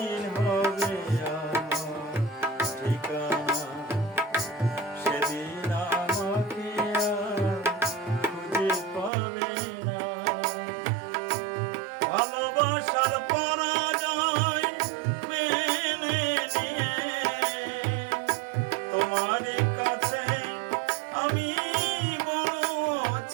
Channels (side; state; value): left; drops out; at 9.1 s